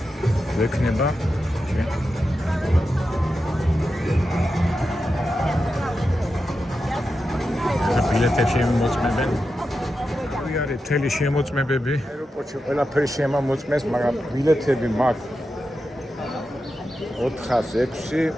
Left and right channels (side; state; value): both; normal; correlation 0.90